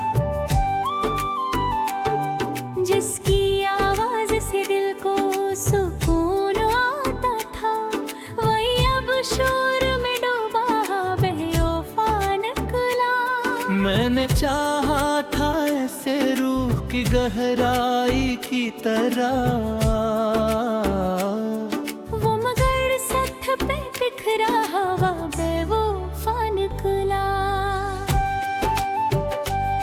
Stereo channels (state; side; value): identical; both; correlation 1.00